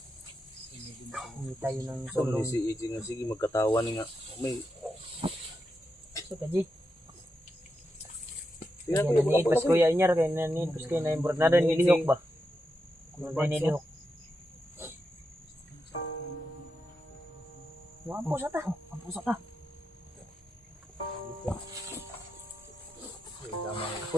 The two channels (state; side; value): normal; both; correlation 0.86